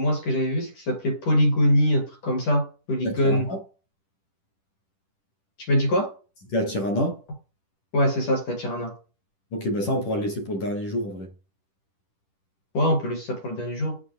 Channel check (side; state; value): right; late; 10 ms